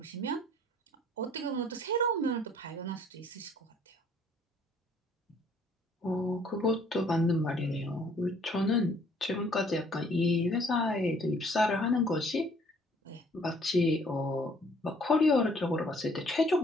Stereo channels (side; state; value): both; normal; correlation 0.60